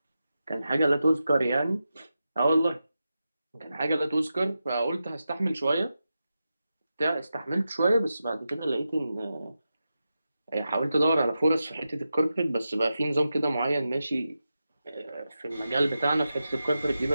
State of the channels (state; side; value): inverted; both; correlation -0.90